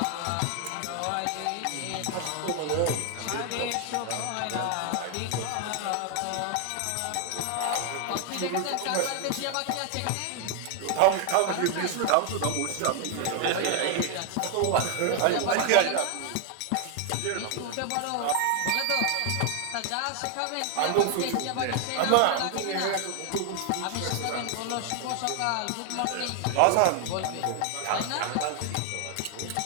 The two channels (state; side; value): different; both; correlation 0.00